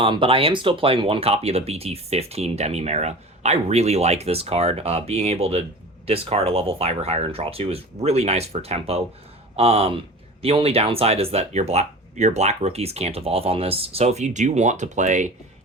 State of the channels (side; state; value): both; normal; correlation 0.36